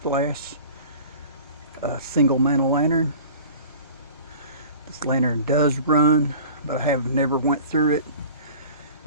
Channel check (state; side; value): inverted; both; correlation -0.43